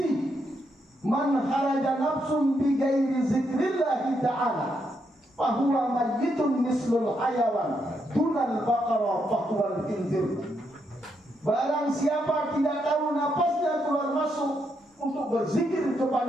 Man kharaja nafsun bi ghairi zikrillah ta'ala fahuwa mayyitun mislul hayawan dunal baqara fahuwal khinzir. Barang siapa tidak tahu napasnya keluar masuk untuk berzikir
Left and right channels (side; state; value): both; normal; correlation 0.79